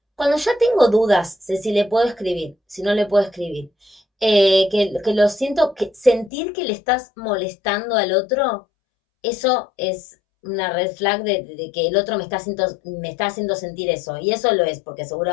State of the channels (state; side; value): drops out; right; at 6.3 s